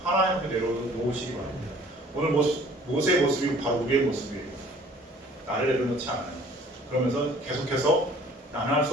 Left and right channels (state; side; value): normal; both; correlation 0.53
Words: 하나님 앞에 내려놓으시기 바랍니다. 오늘 모세의 모습이 바로 우리의 모습이에요. 나를 내려놓지 않아요. 그러면서 계속해서 나는 할